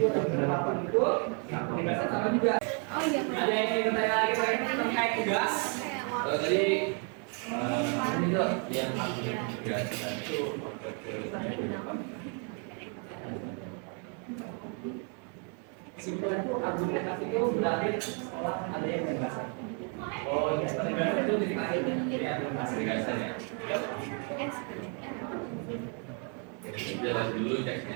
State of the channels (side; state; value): left; quieter; 38.8 dB